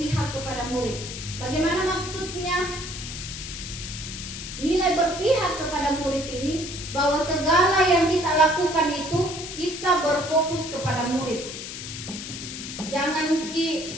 kepada murid. Bagaimana maksudnya? Nilai berpihak kepada murid ini bahwa segala yang kita lakukan itu kita berfokus kepada murid. Jangan ikuti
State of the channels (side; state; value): left; noise; hiss, 9 dB below the sound